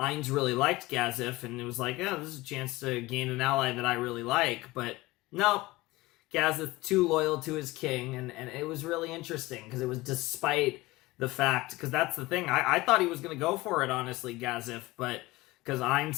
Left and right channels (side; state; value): right; quieter; 20.2 dB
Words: really liked Gazef, and it was like, this is a chance to gain an ally that I really like. But no, Gazef too loyal to his king, and it was really interesting, because it was despite the fact, because that's the thing, I thought he was going to go for it, honestly, Gazef, but because Ainz